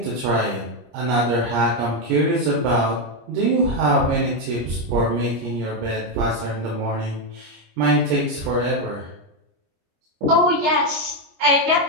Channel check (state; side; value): late; left; 25 ms